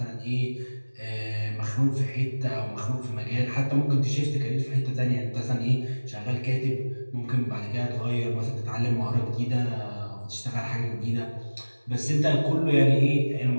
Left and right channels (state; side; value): inverted; both; correlation -1.00